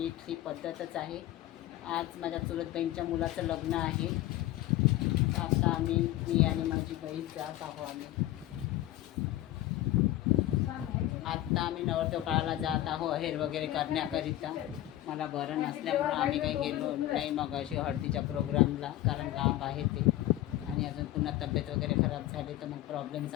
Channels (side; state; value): right; quieter; 14.8 dB